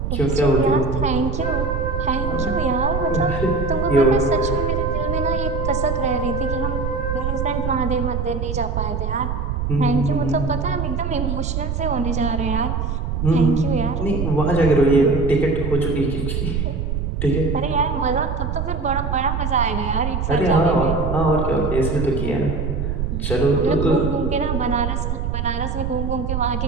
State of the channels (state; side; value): noise; right; rumble, 2 dB below the sound